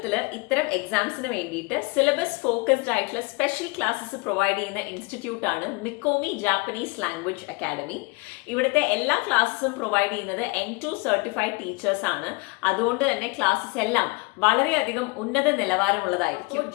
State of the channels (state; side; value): quieter; right; 26.8 dB